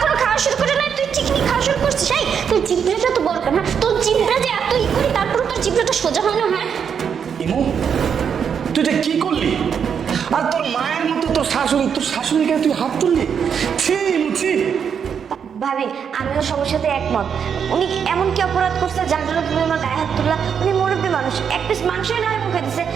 খাওয়া শুরু করে না, তুই চিকনি খাওয়া শুরু করছিস? এই তোর জিভটা তো বড় কেন? তোর জিভটা যে এত করি, তারপর তোর জিভটা সোজা হয় না? হ্যাঁ ইমু, তুই এটা কি করলি? আর তোর মায়ের মতো তোর শাশুড়িকে তুই হাত তুললি? ছি ইমু, ছি। ভাবি, আমিও সবার সাথে একমত। উনি এমন কি অপরাধ করছে যার জন্য তুমি আমার গায়ে হাত তুললা? উনি মুরব্বী মানুষ, এক পিস মাংসই নয় মুখে দিছে,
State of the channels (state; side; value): quieter; left; 7.3 dB